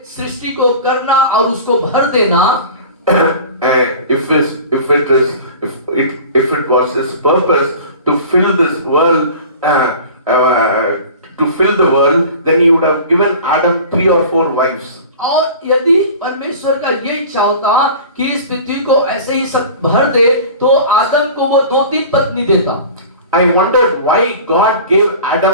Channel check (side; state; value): both; inverted; correlation -0.40